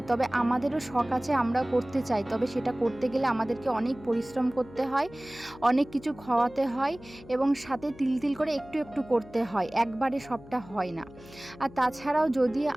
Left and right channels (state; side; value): noise; left; hum, 20 dB below the sound